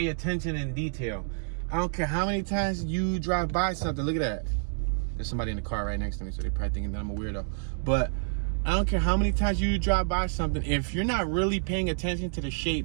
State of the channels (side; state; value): left; silent; digital silence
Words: attention in detail. I don't care how many times you drive by something. Look at that. There's somebody in the car right next to me, so they're probably thinking that I'm a weirdo. But I don't care how many times you drive by something, if you're not really paying attention to the